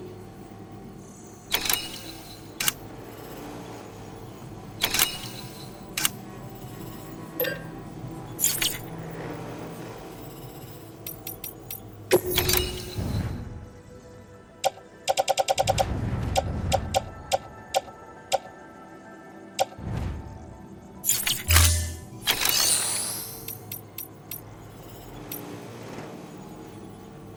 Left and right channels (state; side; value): identical; both; correlation 1.00